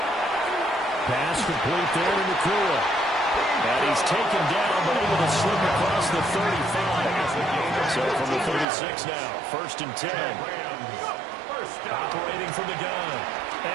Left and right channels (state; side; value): drops out; left; at 8.7 s